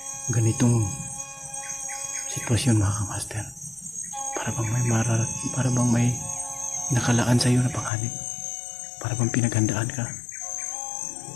ganitong sitwasyon, mga kamaster. Para bang may nakalaan sa iyo na panganib. Para bang pinaghandaan ka.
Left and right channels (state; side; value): drops out; right; at 7.9 s